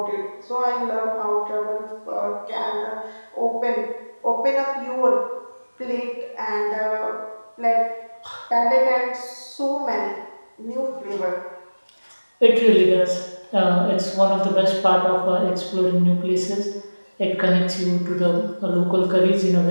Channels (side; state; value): both; inverted; correlation -1.00